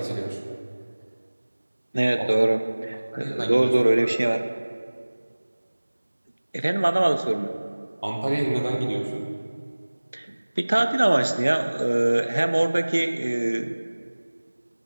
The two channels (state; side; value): inverted; both; correlation -1.00